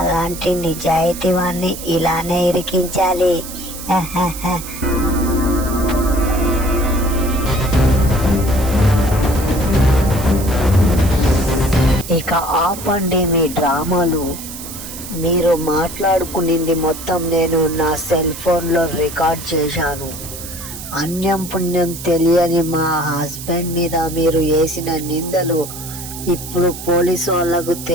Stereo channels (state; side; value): noise; right; hiss, 11 dB below the sound